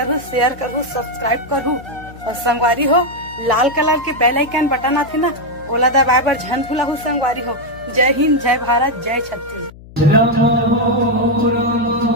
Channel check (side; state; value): left; noise; hum, 19 dB below the sound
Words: शेयर करहु, सब्सक्राइब करहु। और संगवारी हो, लाल कलर के बेल आइकन बटन आथे ना, ओला दबाए बर झन भूलहु संगवारी हो। जय हिंद, जय भारत, जय छत्तीसगढ़।